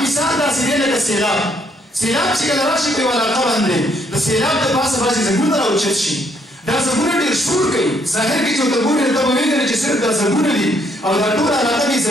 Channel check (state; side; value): normal; both; correlation 0.70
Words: مثال داسې دی لکه سیلاب سیلاب چې کله راشي په یوه علاقه باندې د سیلاب د پاسه بعضې ځنګلونه راوچت شي دا ځنګلونه ډېر شور کوي ظاهر کې چې ورته ګورې نو ته به وینې چې صرف دا ځنګلونه دي او دا ټوله علاقه دې